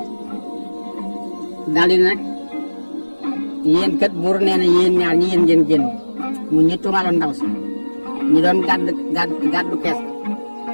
daal di nag yéen kat buur nee na yéen ñaar ñi yéen ngeen génn mu ñu tuumaaloon ndaw si ñu doon gàddu kees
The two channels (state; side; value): inverted; both; correlation -1.00